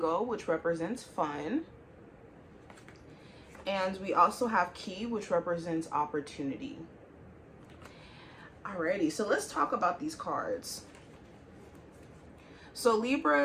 which represents fun. And we also have key, which represents opportunity. Alrighty, so let's talk about these cards. So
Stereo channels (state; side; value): identical; both; correlation 1.00